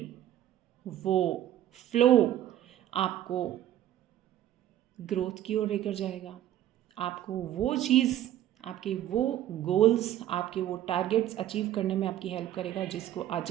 वो फ्लो आपको ग्रोथ की ओर लेकर जाएगा। आपको वो चीज़, आपके वो गोल्स, आपके वो टारगेट्स अचीव करने में आपकी हेल्प करेगा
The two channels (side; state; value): left; quieter; 12.3 dB